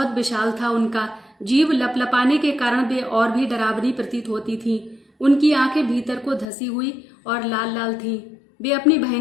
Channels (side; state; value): right; drops out; at 6.5 s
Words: विशाल था उनका। जीभ लपलपाने के कारण वे और भी डरावनी प्रतीत होती थीं। उनकी आंखें भीतर को धसी हुई और लाल लाल थीं। वे अपनी